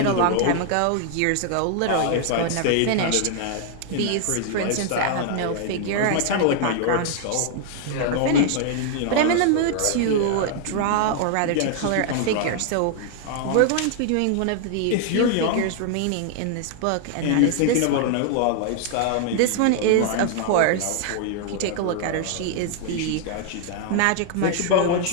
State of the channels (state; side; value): different; both; correlation 0.00